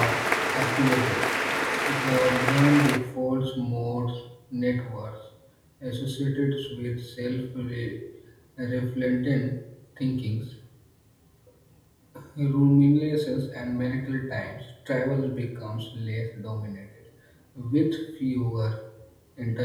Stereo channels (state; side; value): identical; both; correlation 1.00